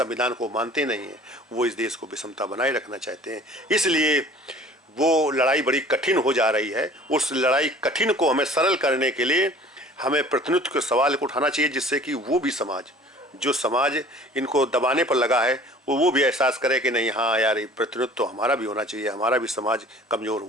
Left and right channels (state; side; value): normal; both; correlation 0.48